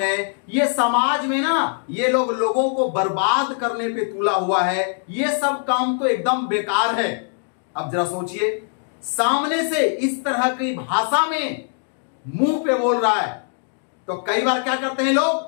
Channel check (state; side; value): silent; right; 59 dB below the other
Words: ये समाज में ना ये लोगों को बर्बाद करने पे तुला हुआ है, ये सब काम तो एकदम बेकार है। अब जरा सोचिए, सामने से इस तरह की भाषा में मुंह पे बोल रहा है तो कई बार क्या करते हैं